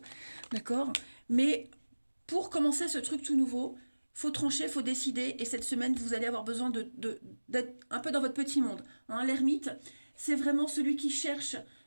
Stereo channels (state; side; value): inverted; both; correlation -1.00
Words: d'accord ? Mais pour commencer ce truc tout nouveau, il faut trancher, il faut décider. Et cette semaine, vous allez avoir besoin d'être un peu dans votre petit monde. Hein, l'ermite, c'est vraiment celui qui cherche